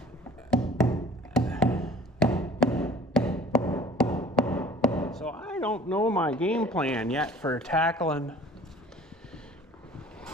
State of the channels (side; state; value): both; normal; correlation 0.49